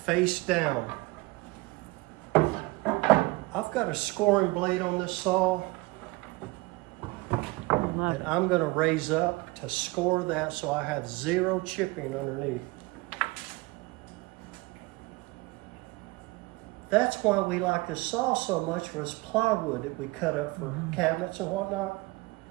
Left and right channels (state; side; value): quieter; left; 23.6 dB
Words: face down. I've got a scoring blade on this saw, Love and it. I'm gonna raise up to score that so I have zero chipping underneath. That's why we like this saw so much, was plywood that we cut up for cabinets and whatnot.